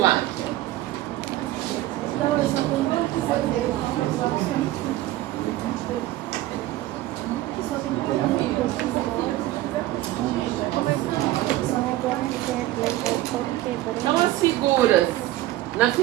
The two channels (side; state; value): left; quieter; 15.9 dB